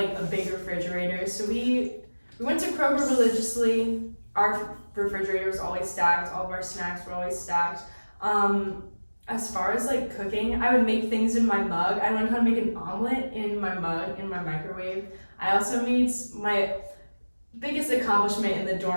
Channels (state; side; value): inverted; both; correlation -1.00